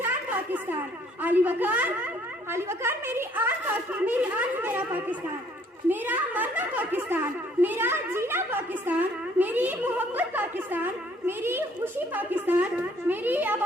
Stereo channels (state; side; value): normal; both; correlation 0.62